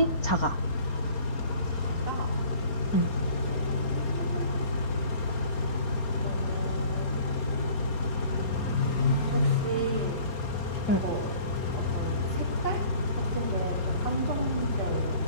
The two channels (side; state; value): right; late; 4.3 ms